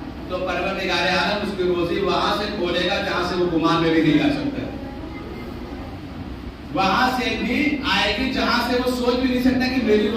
تو پروردگار عالم اس کی روزی وہاں سے کھولے گا جہاں سے وہ گمان میں بھی نہیں آ سکتا. وہاں سے بھی آئے گی جہاں سے وہ سوچ بھی نہیں سکتا کہ میری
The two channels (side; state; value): both; identical; correlation 1.00